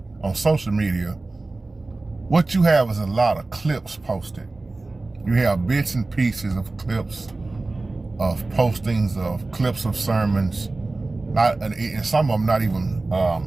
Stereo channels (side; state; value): left; quieter; 3.2 dB